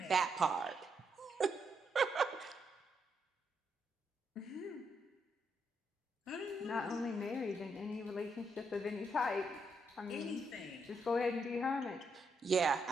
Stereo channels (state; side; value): normal; both; correlation 0.78